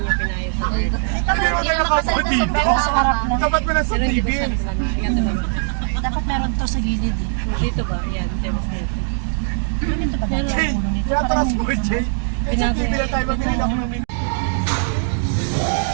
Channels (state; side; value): silent; left; digital silence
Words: pinayos sa air. Pwede mo na nakapo dito. Dapat mo na sa TV. Dapat meron to sa gilid eh. Dito ba? Yan, tebas dito. Dito ba dati Jay, ang ulo nito? pinatras mo, Jay. Eh, sa TV na tayo, mabili ako ng